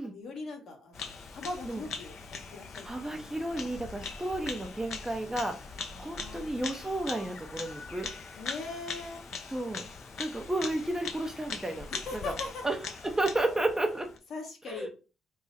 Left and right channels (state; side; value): normal; both; correlation 0.82